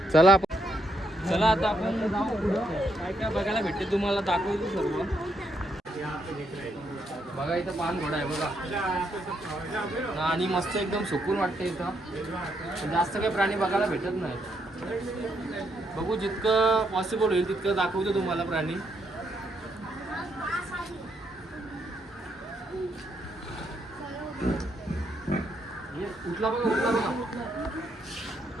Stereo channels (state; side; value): normal; both; correlation 0.76